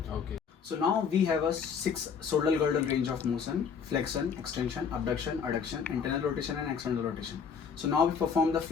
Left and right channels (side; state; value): right; quieter; 6.4 dB